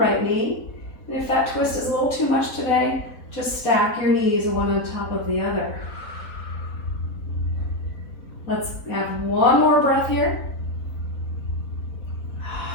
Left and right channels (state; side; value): late; right; 4.0 ms